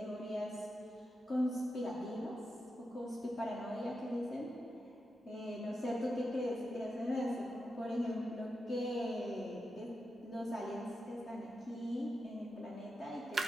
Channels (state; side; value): normal; both; correlation 0.88